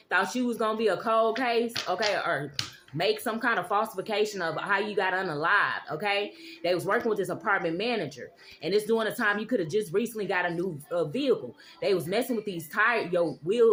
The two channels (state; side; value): identical; both; correlation 1.00